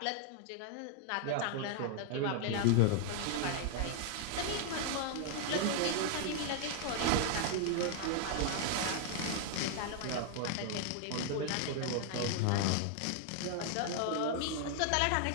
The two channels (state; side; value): different; both; correlation 0.00